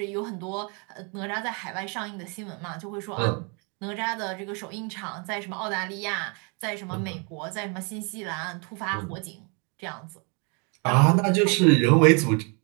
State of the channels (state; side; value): quieter; left; 34.5 dB